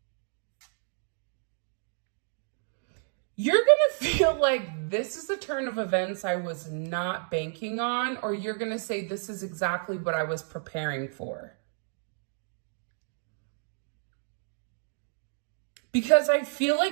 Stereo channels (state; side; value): silent; left; digital silence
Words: You're going to feel like this is a turn of events I was not banking on, or you're going to say, this is exactly what I was preparing for. Because I feel